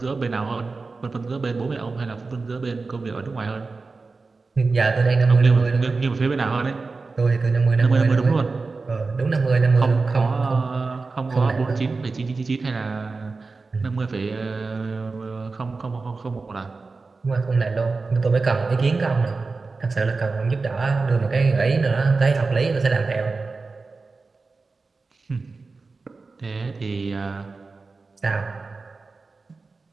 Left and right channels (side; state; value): left; quieter; 4.0 dB